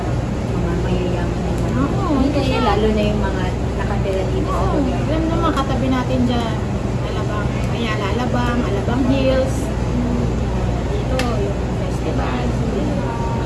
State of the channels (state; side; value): identical; both; correlation 1.00